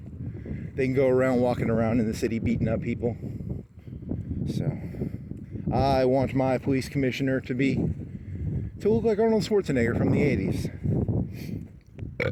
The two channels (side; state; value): both; identical; correlation 1.00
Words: They can go around walking around in the city beating up people. So I want my police commissioner to look like Arnold Schwarzenegger from the 80s.